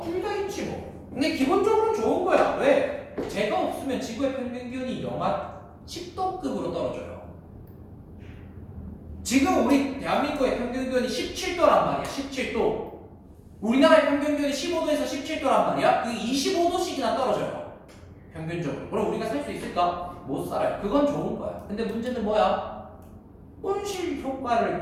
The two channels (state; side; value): identical; both; correlation 1.00